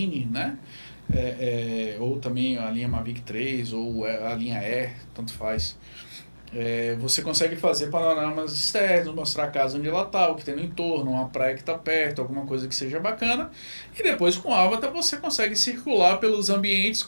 né? Ou também a linha Mavic 3 ou a linha Air, tanto faz. Você consegue fazer panoramas externos, mostrar a casa onde ela está, o que tem no entorno, uma praia que está perto, alguma coisa que seja bacana. E depois com o Avatar você consegue circular pelos ambientes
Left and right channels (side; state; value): both; inverted; correlation -1.00